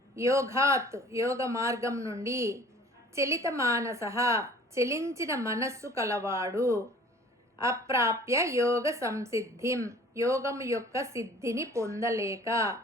యోగాత్ యోగ మార్గం నుండి, చలిత మానసః చలించిన మనస్సు కలవాడు, అప్రాప్య యోగ సంసిద్ధిం యోగం యొక్క సిద్ధిని పొందలేక,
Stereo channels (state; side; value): normal; both; correlation 0.49